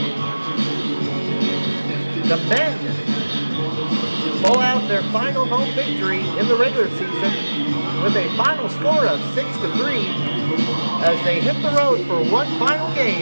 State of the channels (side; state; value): both; inverted; correlation -1.00